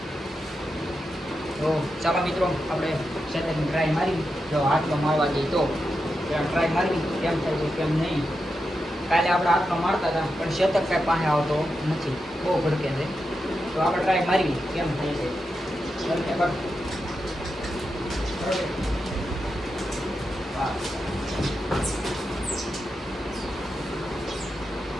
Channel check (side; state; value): both; normal; correlation 0.88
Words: તો ચાલો મિત્રો આપણે સેટની ટ્રાય મારી. જો હાથમાં મારવા જઈએ તો ટ્રાય મારવી કેમ થાય છે કેમ નહીં. કાલે આપણે હાથમાં મારતા હતા પણ શેતક કાંઈ પાસે આવતો નથી, બહુ ભડકે છે. તો આપણે ટ્રાય મારવી કેમ થાય છે.